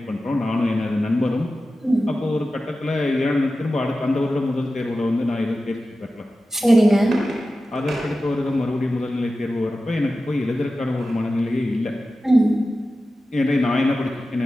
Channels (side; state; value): both; normal; correlation 0.94